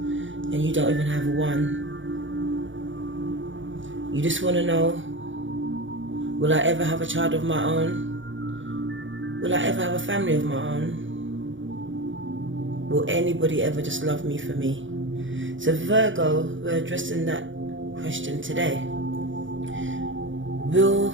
and you don't even have one. You just want to know, will I ever have a child of my own? Will I ever have a family of my own? Will anybody ever just love me for me? So Virgo, we're addressing that question today. Will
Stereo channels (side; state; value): left; late; 0.56 ms